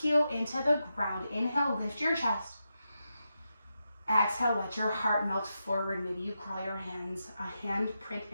into the ground. Inhale, lift your chest. Exhale, let your heart melt forward. Maybe you crawl your hands, a hand print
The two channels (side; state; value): both; inverted; correlation -0.88